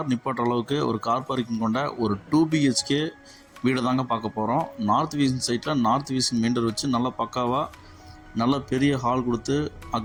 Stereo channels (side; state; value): both; identical; correlation 1.00